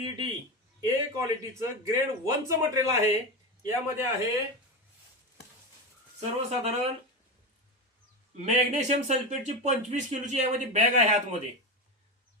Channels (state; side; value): normal; both; correlation 0.18